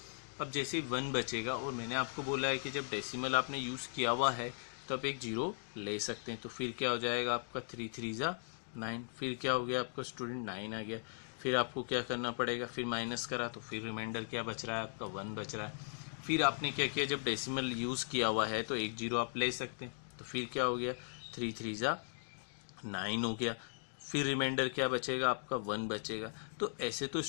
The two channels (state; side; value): silent; right; digital silence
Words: अब जैसे 1 बचेगा, और मैंने आपको बोला है कि जब डेसिमल आपने यूज़ किया हुआ है तो आप एक 0 ले सकते हैं। तो फिर क्या हो जाएगा आपका 3 3 जा 9। फिर क्या हो गया आपका स्टूडेंट, 9 आ गया। फिर आपको क्या करना पड़ेगा, फिर माइनस करा तो फिर रिमाइंडर क्या बच रहा है आपका, 1 बच रहा है। फिर आपने क्या किया, जब डेसिमल यूज़ किया हुआ है तो एक 0 आप ले सकते हैं। तो फिर क्या हो गया, 3 3 जा 9 हो गया। फिर रिमाइंडर क्या बचेगा आपका, 1 बचेगा। तो ऐसे तो